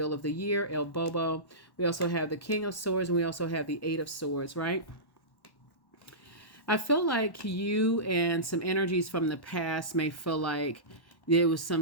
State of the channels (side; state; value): right; late; 1.1 ms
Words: of the Year, El Bobo. We also have the King of Swords, and we also have the Eight of Swords, right? I feel like you and some energies from the past may feel like there was some